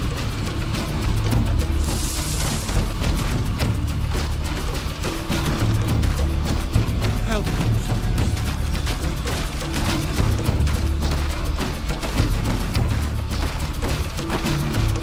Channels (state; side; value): identical; both; correlation 1.00